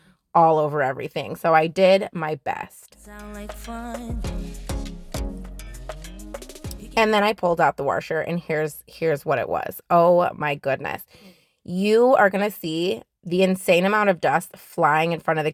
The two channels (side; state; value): both; identical; correlation 1.00